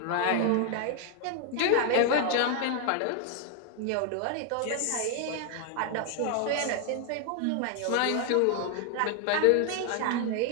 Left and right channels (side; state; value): both; different; correlation 0.00